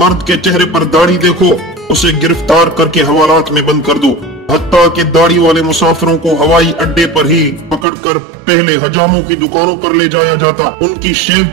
کے چہرے پر داڑھی دیکھو اسے گرفتار کر کے حوالات میں بند کر دو۔ حتیٰ کہ داڑھی والے مسافروں کو ہوائی اڈے پر ہی پکڑ کر پہلے حجاموں کی دکانوں پر لے جایا جاتا، ان کی شیو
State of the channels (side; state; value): left; drops out; at 7.9 s